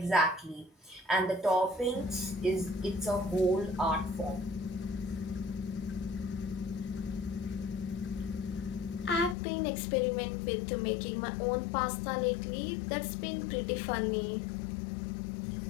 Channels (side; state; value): right; drops out; at 9.3 s